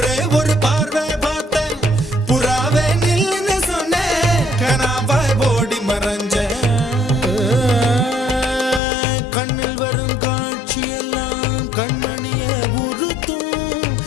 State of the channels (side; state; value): right; drops out; at 8.8 s